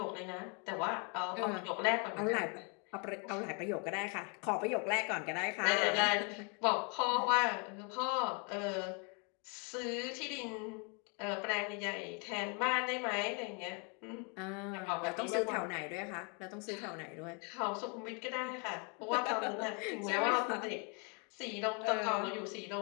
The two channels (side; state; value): right; quieter; 35.7 dB